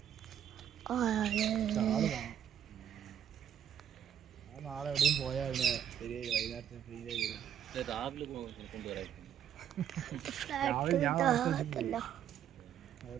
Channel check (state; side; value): quieter; left; 9.7 dB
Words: നാളെ എവിടെയും പോയാൽ ശരിയായി. വൈകുന്നേരത്തെ ഫ്രീ രാവിലെ കൊണ്ടുവരാം. രാവിലെ ഞാൻ